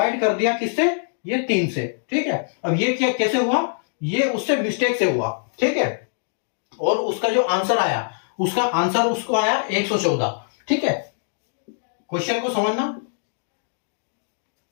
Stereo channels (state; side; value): silent; right; digital silence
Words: कर दिया किससे, ये 3 से। ठीक है, अब ये क्या कैसे हुआ, ये उससे मिस्टेक से हुआ। ठीक है, और उसका जो आंसर आया, उसका आंसर उसको आया 114। ठीक है, क्वेश्चन को समझना